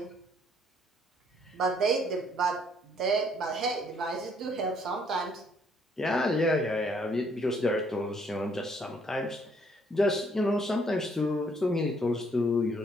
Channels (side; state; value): both; normal; correlation 0.66